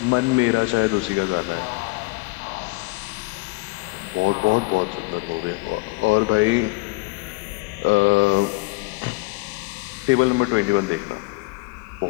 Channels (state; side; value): quieter; right; 24.7 dB